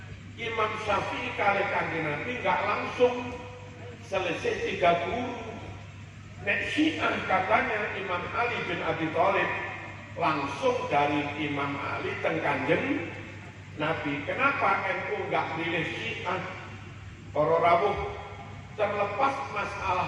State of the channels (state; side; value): identical; both; correlation 1.00